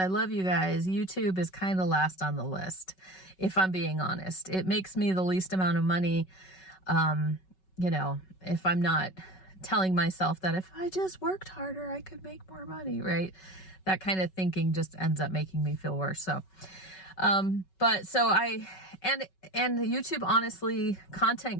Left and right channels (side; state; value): right; late; 5.3 ms